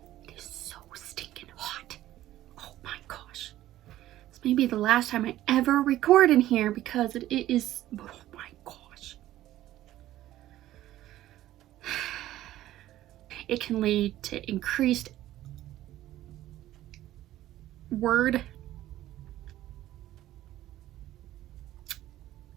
It is so stinking hot. Oh my gosh. This may be the last time I ever record in here because it is, oh my gosh. It can lead to increased word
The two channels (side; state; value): left; quieter; 14.2 dB